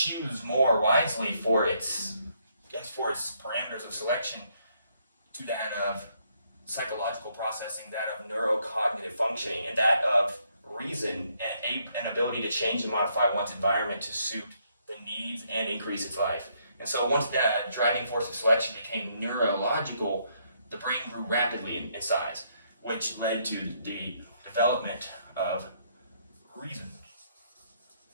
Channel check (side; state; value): both; inverted; correlation -0.72